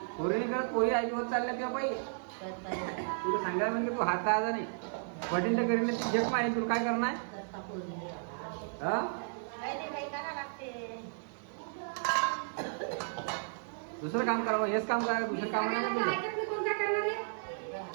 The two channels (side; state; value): left; silent; 55 dB below the other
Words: पोरी नाही करत पोरी आईवर चालल्या किंवा बाई तुला सांगायला म्हणजे तू हात आजा नाही वडील तर करीन ती जग माहीत तुला काय करणार हा दुसरं काम करावं हेच काम करा दुसरं काम नाही